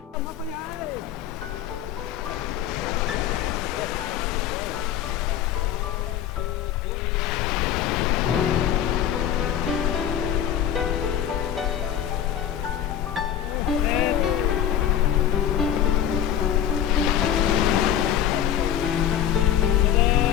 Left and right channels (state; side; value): quieter; right; 10.2 dB